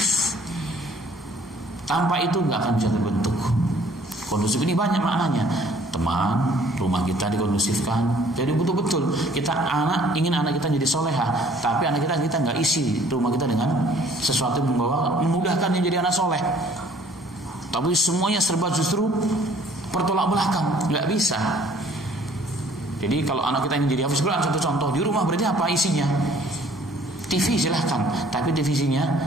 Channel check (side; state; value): both; normal; correlation 0.57